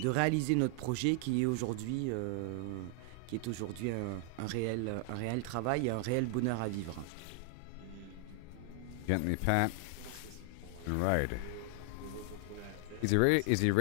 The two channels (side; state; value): both; different; correlation 0.00